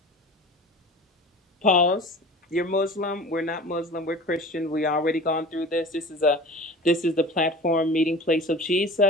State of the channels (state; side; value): normal; both; correlation 0.39